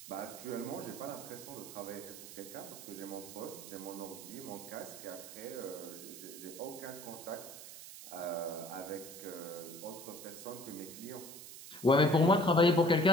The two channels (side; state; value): right; noise; hiss, 13 dB below the sound